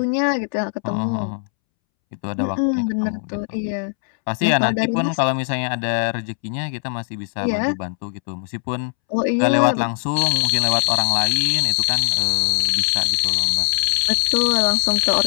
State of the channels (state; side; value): silent; right; 66 dB below the other